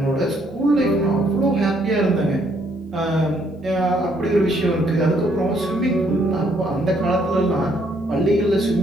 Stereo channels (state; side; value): normal; both; correlation 0.69